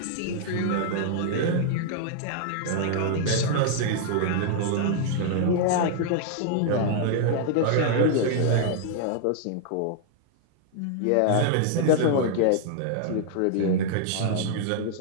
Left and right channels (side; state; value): both; different; correlation -0.01